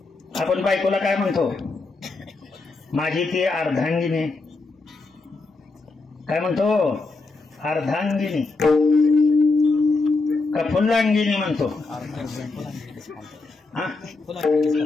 आपण बायकोला काय म्हणतो, माझी ती अर्धांगिनी, काय म्हणतो? अर्धांगिनी का फुल्लांगिनी म्हणतो? हा,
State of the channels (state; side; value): quieter; right; 3.7 dB